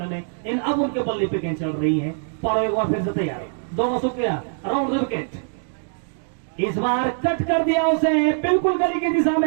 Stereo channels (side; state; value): left; silent; 64 dB below the other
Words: में, इन अब उनके बल्ले पे गेंद चल रही है। पारो एक बार फिर से तैयार, दोनों शुक्रिया, राउंड द विकेट। इस बार कट कर दिया उसे, बिल्कुल गली की दिशा